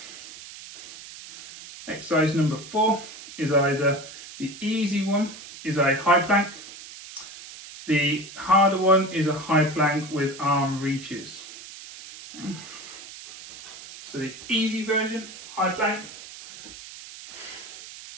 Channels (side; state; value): right; noise; hiss, 15 dB below the sound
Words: Exercise number 4 is either the easy one is a high plank. The harder one is a high plank with arm reaches. Okay. So the easy version, high plank.